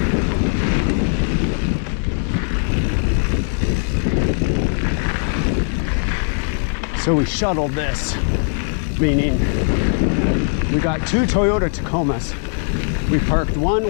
So we shuttled this, meaning we got 2 Toyota Tacomas. We parked one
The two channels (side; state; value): right; silent; 66 dB below the other